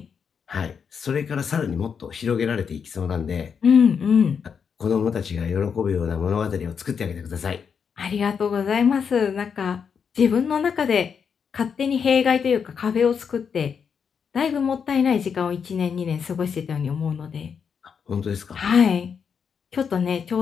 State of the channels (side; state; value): right; quieter; 6.7 dB